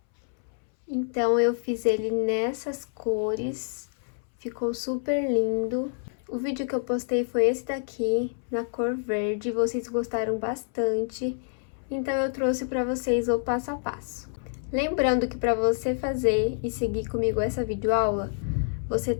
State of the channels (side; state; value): right; silent; 60 dB below the other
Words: Então eu fiz ele nessas cores, ficou super lindo. O vídeo que eu postei foi esse daqui, na cor verde, vocês gostaram bastante. Então, eu trouxe para vocês o passo a passo. Lembrando que para você fazer e seguir comigo essa videoaula, você